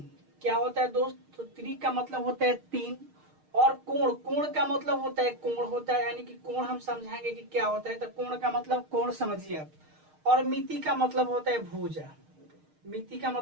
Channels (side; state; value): left; late; 6.5 ms